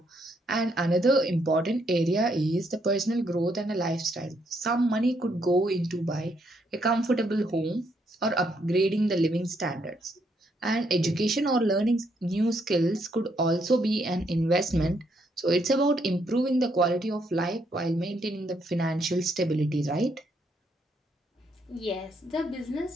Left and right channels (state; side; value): normal; both; correlation 0.74